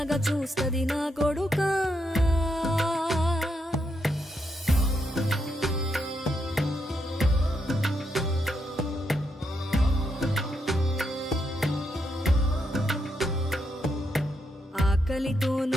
చూస్తది నా కొడుకా ఆకలితో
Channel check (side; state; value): both; normal; correlation 0.80